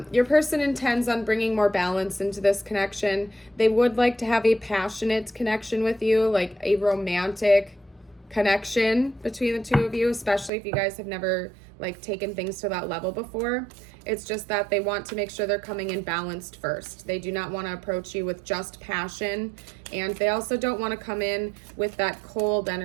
Your person intends on bringing more balance into this connection. They would like to have a passionate connection with you, like a romantic connection between the two of you, especially if you guys have never like taken things to that level before. It's just that they want to make sure they're coming in balanced first. They do not want to approach you with just passion, and they also don't want to come in with that cold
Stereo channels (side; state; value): left; drops out; at 10.5 s